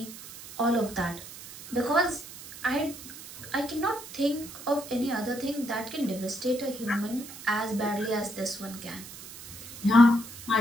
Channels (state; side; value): noise; right; hiss, 14 dB below the sound